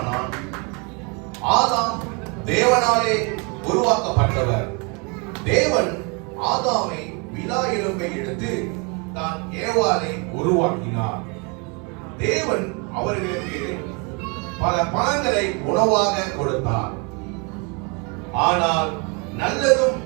ஆதாம் தேவனாலே உருவாக்கப்பட்டவர். தேவன் ஆதாமை விலா எலும்பை எடுத்து தான் ஏவாளை உருவாக்கினார். தேவன் அவர்களுக்கு பல பழங்களை உணவாக கொடுத்தார். ஆனால் நல்லதும்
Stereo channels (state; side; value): quieter; left; 31.6 dB